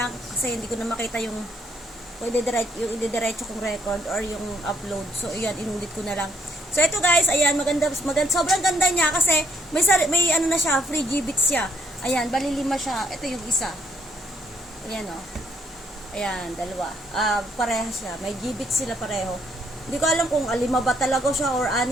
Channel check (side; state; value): both; normal; correlation 0.70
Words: kasi hindi ko na makita yung i-diretso kong record or yung upload. So, ayan, inulit ko na lang. So, ito guys, ayan, maganda, sobrang ganda niya kasi may ano na siya, free G-bits siya. Ayan, bali 5 siya. Ito yung isa. Ayan, oh. Ayan, dalawa. Parehas siya. May G-bits sila pareho. Hindi ko alam kung 5 ba talaga siya or